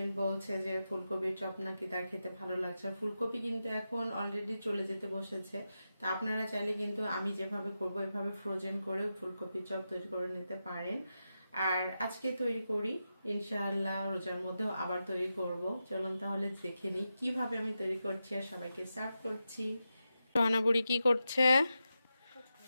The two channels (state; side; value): inverted; both; correlation -0.90